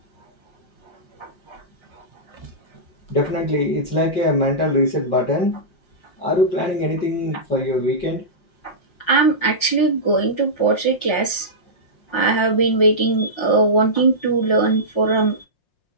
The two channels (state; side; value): late; right; 5.6 ms